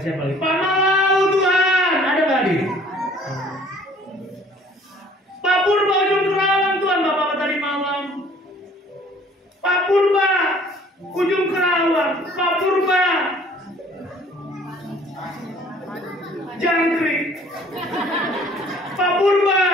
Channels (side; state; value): both; normal; correlation 0.55